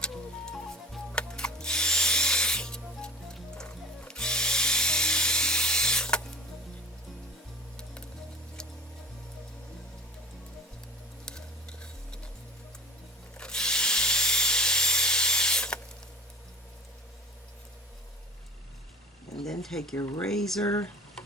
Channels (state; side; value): normal; both; correlation 0.43